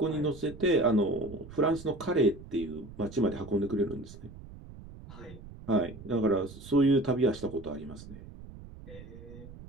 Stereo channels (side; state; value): right; noise; rumble, 16 dB below the sound